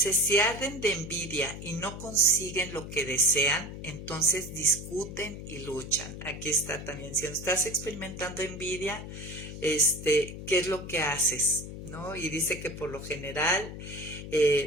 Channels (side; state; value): left; noise; hum, 10 dB below the sound